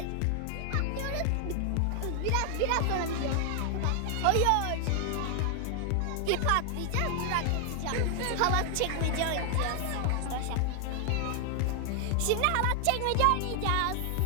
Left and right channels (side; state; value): both; different; correlation 0.00